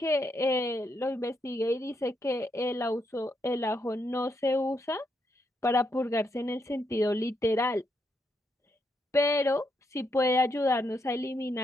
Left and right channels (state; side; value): normal; both; correlation 0.79